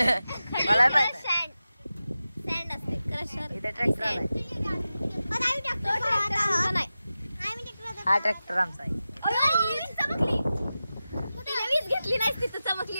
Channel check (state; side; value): inverted; both; correlation -0.94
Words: मला माहित सँड असते. क्रशर इथे ट्रॅक्टर आलाय. हा ट्रॅक्टर आमचा आहे. चमकली. तिला वीज घेतली नाही तिथं चमकली